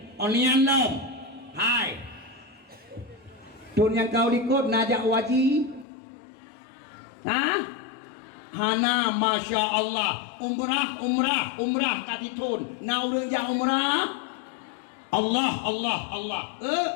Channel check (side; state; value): right; drops out; at 5.9 s